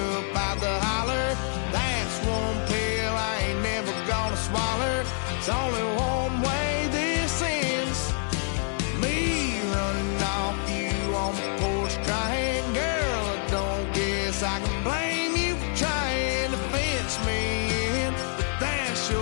out the holler. That's one pill I ain't never gonna swallow. It's only one way this ends. Me running off you on the porch crying. Girl, I don't guess I can blame you for trying to fence me in, but that's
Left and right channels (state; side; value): silent; right; 60 dB below the other